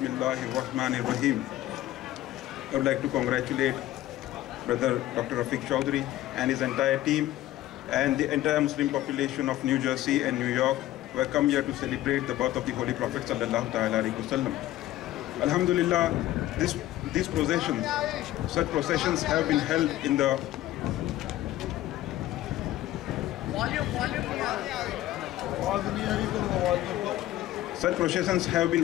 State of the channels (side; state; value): right; quieter; 14.8 dB